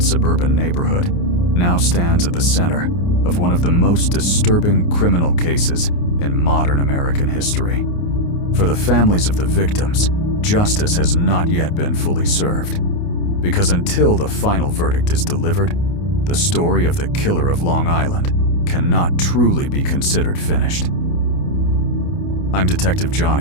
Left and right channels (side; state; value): right; late; 29 ms